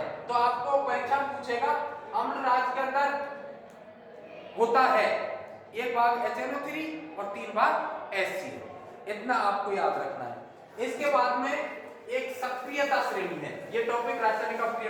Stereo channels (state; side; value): identical; both; correlation 1.00